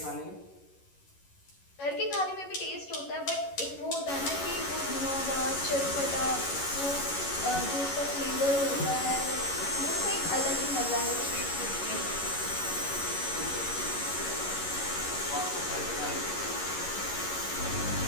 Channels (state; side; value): late; right; 11 ms